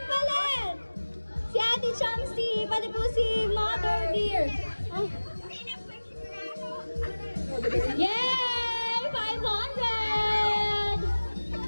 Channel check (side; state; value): both; inverted; correlation -1.00